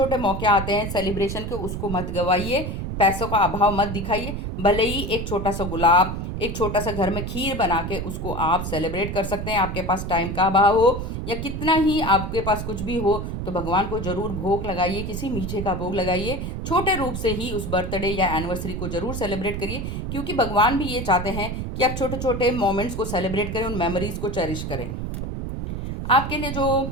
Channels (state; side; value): noise; right; rumble, 4 dB below the sound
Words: मौके आते हैं सेलिब्रेशन के, उसको मत गवाइए, पैसों का अभाव मत दिखाइए। भले ही एक छोटा सा गुलाब, एक छोटा सा घर में खीर बना के उसको आप सेलिब्रेट कर सकते हैं। आपके पास टाइम का अभाव हो या कितना ही आपके पास कुछ भी हो, तो भगवान को जरूर भोग लगाइए, किसी मीठे का भोग लगाइए। छोटे रूप से ही उस बर्थडे या एनिवर्सरी को जरूर सेलिब्रेट करिए, क्योंकि भगवान भी ये चाहते हैं कि आप छोटे छोटे मोमेंट्स को सेलिब्रेट करें, उन मेमोरीज को चेरिश करें। आपके लिए